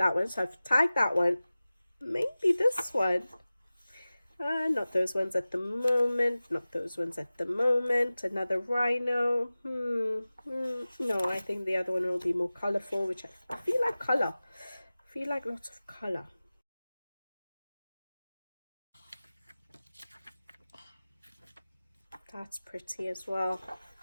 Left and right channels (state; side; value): inverted; both; correlation -0.97